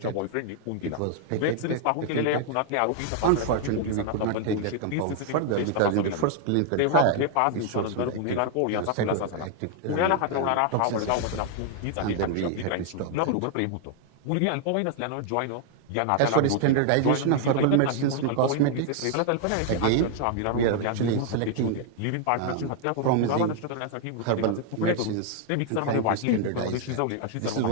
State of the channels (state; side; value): different; both; correlation 0.00